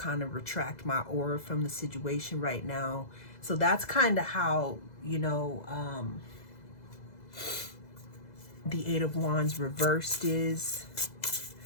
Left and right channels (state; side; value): late; right; 2.0 ms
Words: of retract my aura from the situation right now. So that's kind of how, the Eight of Wands reversed is.